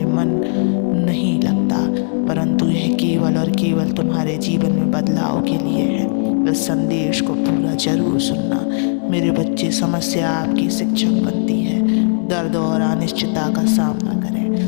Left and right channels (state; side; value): silent; right; digital silence